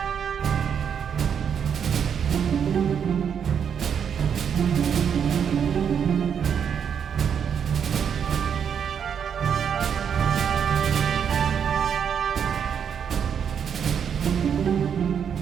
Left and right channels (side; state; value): left; quieter; 7.7 dB